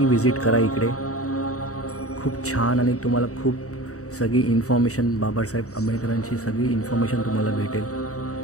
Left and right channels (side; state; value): right; late; 0.65 ms